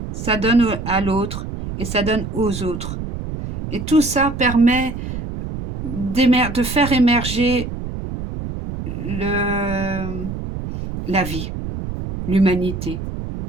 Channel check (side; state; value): right; noise; rumble, 7 dB below the sound